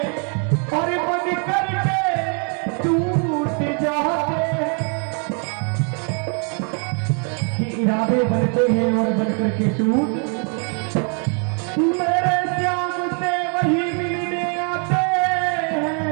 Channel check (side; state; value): left; quieter; 39.8 dB